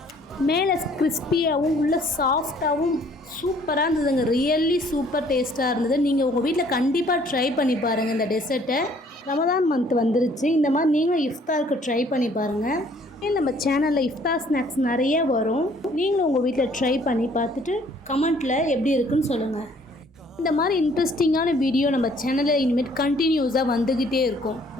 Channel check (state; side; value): normal; both; correlation 0.60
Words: மேலே கிறிஸ்பியாகவும் உள்ள சாஃப்டாகவும் சூப்பராக இருந்ததுங்க. ரியலி சூப்பர் டேஸ்ட்டாக இருந்தது. நீங்கள் உங்கள் வீட்டில் கண்டிப்பாக ட்ரை பண்ணி பாருங்கள் இந்த டெசர்ட்டை. ரமதான் மந்த் வந்துருச்சு. இந்த மாதிரி நீங்களும் இஃப்தாருக்கு ட்ரை பண்ணி பாருங்கள். நம்ம சேனலில் இஃப்தார் ஸ்நாக்ஸ் நிறைய வரும். நீங்களும் உங்கள் வீட்டில் ட்ரை பண்ணி பார்த்துட்டு கமெண்ட்டில் எப்படி இருக்குன்னு சொல்லுங்கள். இந்த மாதிரி இன்ட்ரெஸ்டிங்கான வீடியோ நம்ம சேனலில் இனிமேல் கண்டினியூஸாக வந்துக்கிட்டே இருக்கும்.